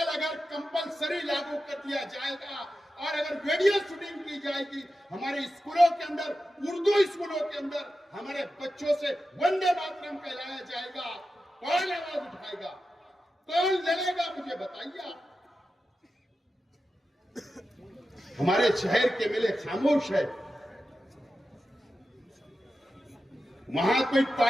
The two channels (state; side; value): normal; both; correlation 0.91